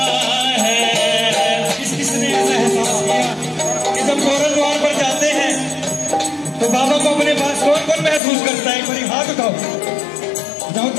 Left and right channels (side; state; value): right; drops out; at 8.2 s